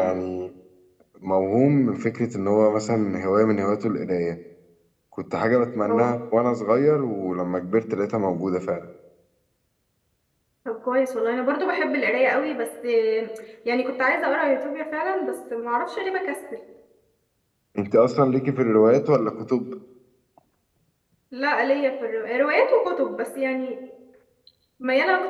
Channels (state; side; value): identical; both; correlation 1.00